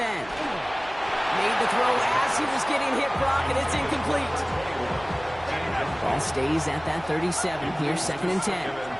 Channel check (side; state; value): right; noise; hum, 19 dB below the sound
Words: Made the throw as he was getting hit, Brock, and it's incomplete. Ball stays at that 37. Here's 2nd and 10.